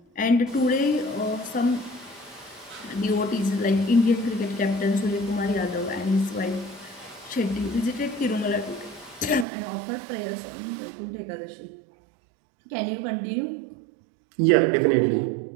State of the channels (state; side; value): drops out; left; at 9.5 s